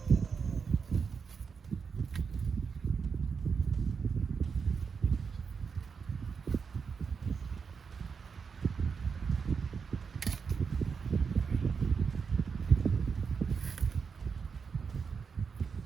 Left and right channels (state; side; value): quieter; left; 5.8 dB